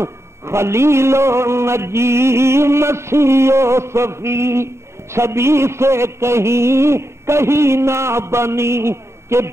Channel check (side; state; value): left; late; 0.13 ms